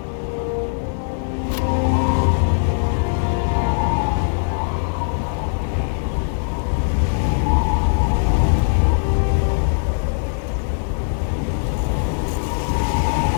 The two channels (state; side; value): silent; right; digital silence